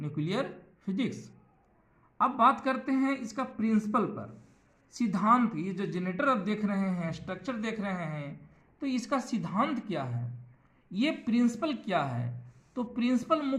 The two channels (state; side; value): identical; both; correlation 1.00